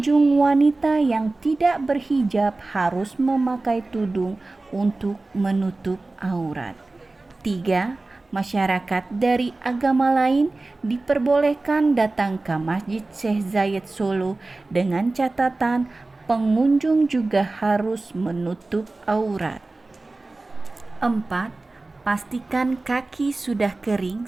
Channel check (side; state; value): left; quieter; 3.2 dB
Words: wanita yang tidak berhijab harus memakai tudung untuk menutup aurat. 3. Masyarakat dari agama lain diperbolehkan datang ke Masjid Syekh Zayed Solo dengan catatan pengunjung juga harus menutup aurat. 4. Pastikan kaki sudah